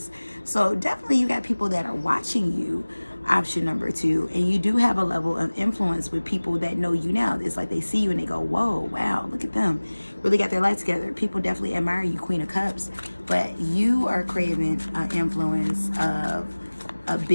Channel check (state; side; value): inverted; both; correlation -1.00